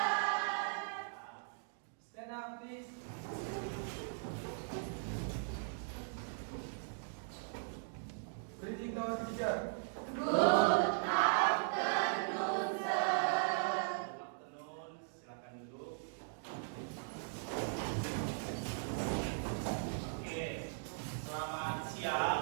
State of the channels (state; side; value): silent; left; digital silence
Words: Stand up, please. Greeting to our teacher. Good afternoon, sir. Good afternoon. Silakan duduk. Oke. Selamat